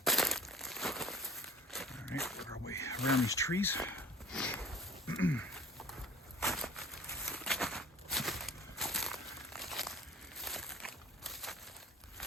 Around these trees.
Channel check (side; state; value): both; normal; correlation 0.44